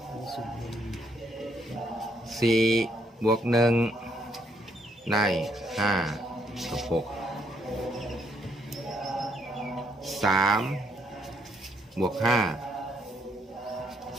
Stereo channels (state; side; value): normal; both; correlation 0.72